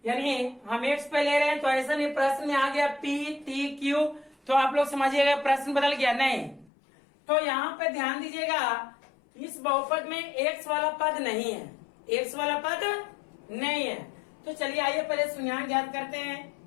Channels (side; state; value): right; drops out; at 6.7 s